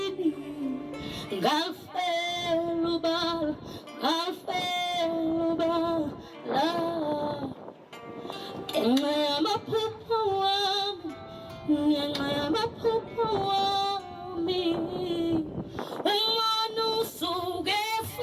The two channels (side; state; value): both; identical; correlation 1.00